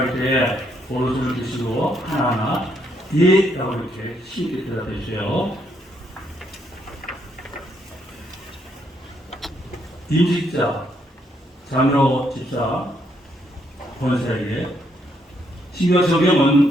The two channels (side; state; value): both; normal; correlation 0.74